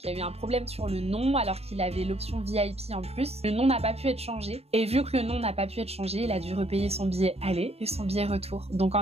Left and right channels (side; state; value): left; late; 0.30 ms